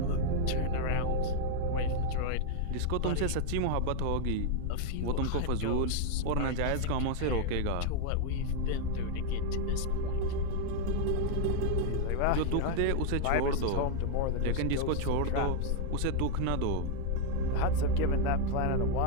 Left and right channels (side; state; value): both; different; correlation 0.00